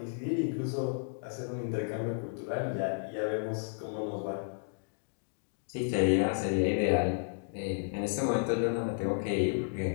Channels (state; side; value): silent; right; digital silence